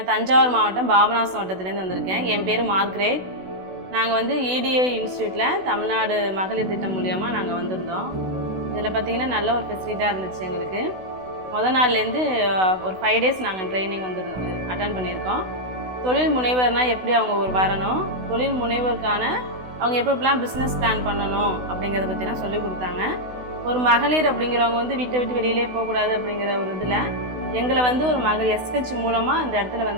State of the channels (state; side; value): late; left; 16 ms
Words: தஞ்சாவூர் மாவட்டம் பாபநாசம் வட்டத்திலேருந்து வந்திருக்கேன். என் பேர் மார்க்ரேட். நாங்கள் வந்து EDA இன்ஸ்டியூட்டில் தமிழ்நாடு மகளிர் திட்டம் மூலியமாக நாங்கள் வந்திருந்தோம். இதில் பார்த்திங்கன்னா நல்ல ஒரு ஃபெசிலிட்டாக இருந்துச்சு எங்களுக்கு. நாள்லேருந்து ஒரு 5 டேஸ் நாங்கள் ட்ரைனிங் அட்டன் பண்ணியிருக்கோம். தொழில் முனைவர்னால் எப்படி அவங்க வரணும், தொழில் முனைவருக்கான அவங்க எப்படிலாம் பிஸ்னஸ் பிளான் பண்ணணும் அப்படிங்கிறத பற்றிலாம் சொல்லி கொடுத்தாங்க. ஒரு மகளிர் அப்படிங்கிறவங்க வந்து வீட்டை விட்டு வெளியிலே போகக்கூடாது அப்படிங்கிற ஒரு இதில் எங்களை வந்து ஒரு மகளிர் SH மூலமாக அந்த இடத்துல